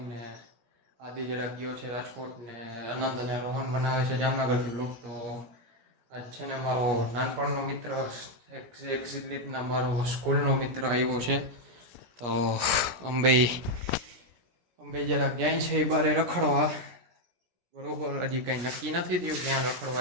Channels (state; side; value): late; left; 17 ms